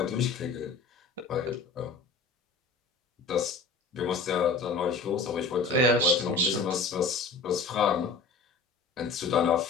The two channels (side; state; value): right; quieter; 4.3 dB